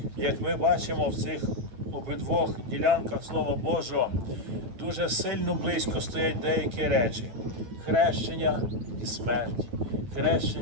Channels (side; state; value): left; late; 9.2 ms